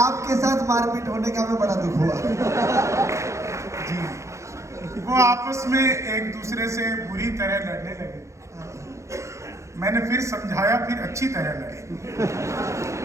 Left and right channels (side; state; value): left; late; 0.14 ms